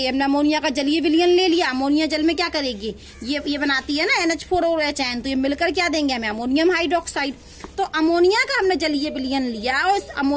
हमने अमोनिया का जलीय विलयन ले लिया। अमोनिया जल में क्या करेगी? ये बनाती है ना NH4 और OH आयन, तो ये मिलकर क्या देंगे हमें? Ammonium hydroxide. तो अमोनिया का हमने जलीय विलयन लिया और इस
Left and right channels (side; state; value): both; identical; correlation 1.00